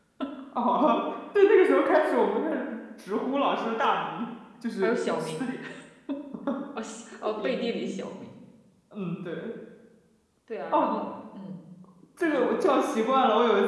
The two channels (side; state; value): both; identical; correlation 1.00